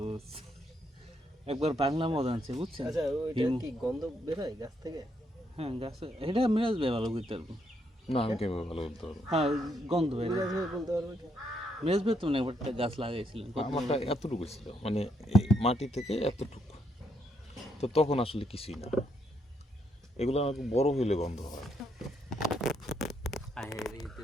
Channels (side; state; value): both; normal; correlation 0.75